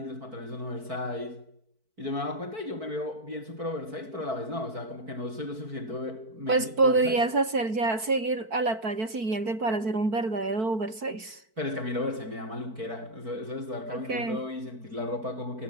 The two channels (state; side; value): late; left; 4.5 ms